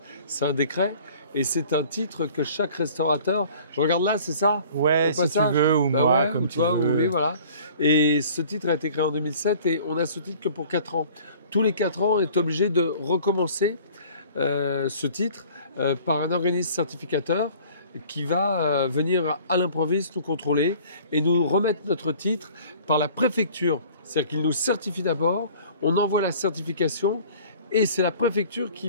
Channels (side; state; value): both; inverted; correlation -0.49